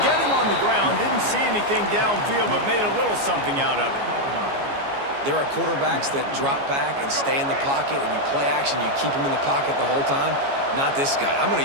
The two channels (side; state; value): left; late; 14 ms